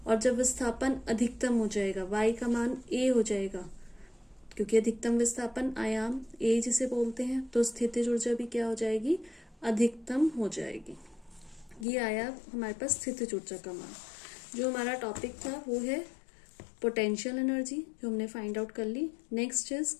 और जब विस्थापन अधिकतम हो जाएगा, y का मान a हो जाएगा, क्योंकि अधिकतम विस्थापन आयाम a जिसे बोलते हैं, तो स्थितिज ऊर्जा भी क्या हो जाएगी? अधिकतम हो जाएगी। ये आया हमारे पास स्थितिज ऊर्जा का मान। जो हमारा टॉपिक था वो है पोटेंशियल एनर्जी, जो हमने फाइंड आउट कर ली। नेक्स्ट इज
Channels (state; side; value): drops out; right; at 11.9 s